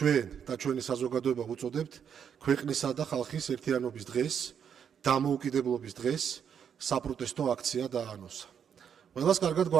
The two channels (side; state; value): left; quieter; 7.9 dB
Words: და ჩვენი საზოგადოება ვუწოდებთ, ქვეყნისა და ხალხის ერთიანობის დღეს, დამოუკიდებლობის დღეს საპროტესტო აქცია დაანონსა. ყველას კარგად